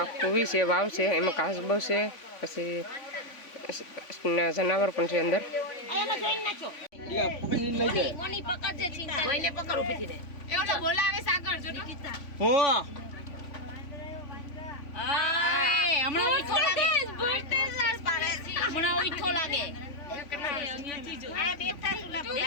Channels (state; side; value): late; right; 3.5 ms